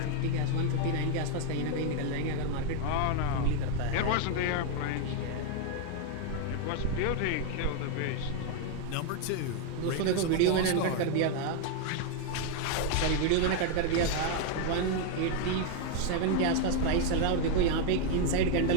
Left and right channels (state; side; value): different; both; correlation 0.01